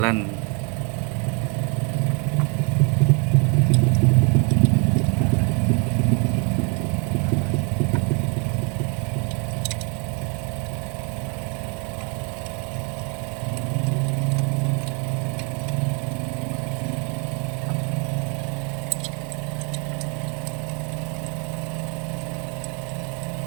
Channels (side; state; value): left; quieter; 34.5 dB